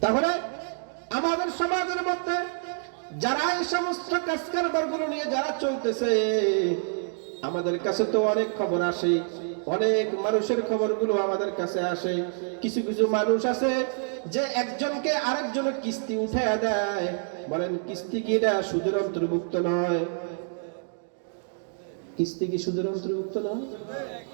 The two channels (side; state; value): left; silent; digital silence